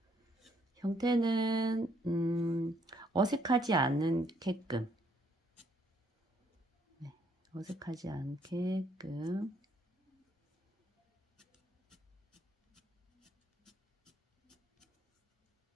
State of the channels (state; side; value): normal; both; correlation 0.68